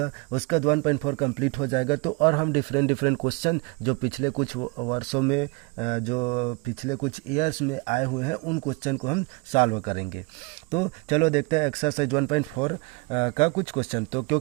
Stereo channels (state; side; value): quieter; left; 28.4 dB